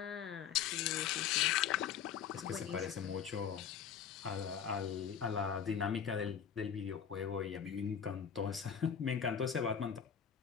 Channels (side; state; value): right; quieter; 8.0 dB